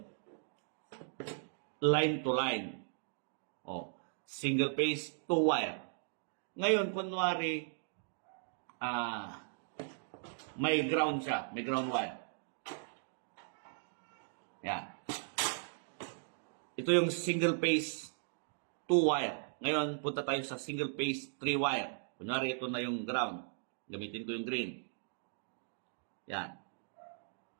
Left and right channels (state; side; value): silent; left; digital silence